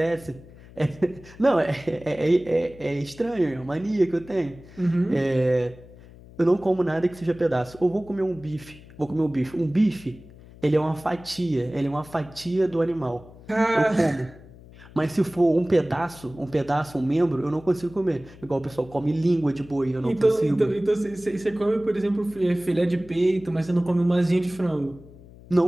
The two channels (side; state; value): left; noise; hum, 20 dB below the sound